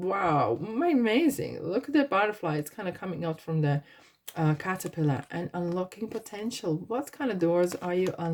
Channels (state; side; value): identical; both; correlation 1.00